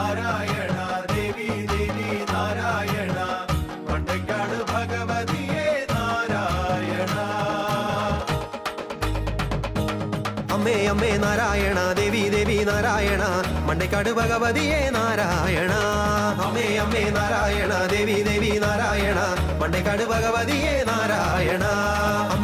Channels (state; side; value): identical; both; correlation 1.00